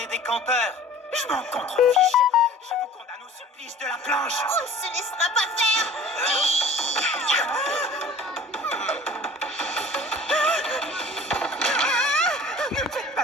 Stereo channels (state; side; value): normal; both; correlation 0.45